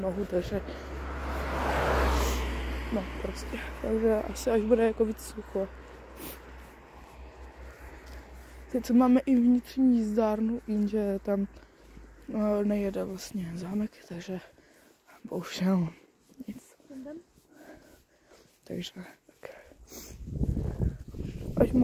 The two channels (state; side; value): identical; both; correlation 1.00